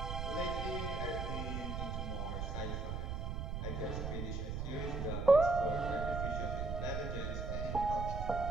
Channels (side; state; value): right; noise; rumble, 3 dB below the sound